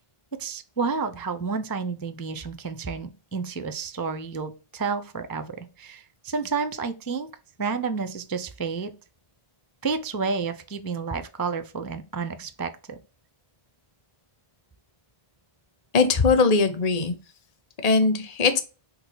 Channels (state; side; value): late; right; 1.8 ms